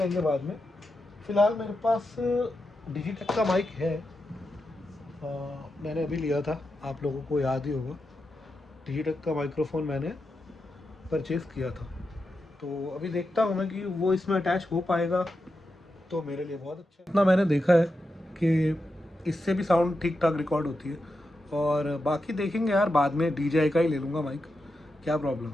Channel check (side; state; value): both; normal; correlation 0.88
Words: बाद में। फ़िलहाल मेरे पास डिजिटेक का माइक है। मैंने अभी लिया था, आप लोगों को याद ही होगा। डिजिटेक का माइक्रोफोन मैंने परचेज़ किया था, तो अभी देखता हूँ मैं कि वो इसमें अटैच हो पाएगा तो मेरे लिए बहुत अच्छा है। इतना मैंने देखा है कि इससे भी साउंड ठीक ठाक रिकॉर्ड होती है, और बाकी देखेंगे यार बाद में। DJI का ही ले लूँगा माइक, क्या प्रॉब्लम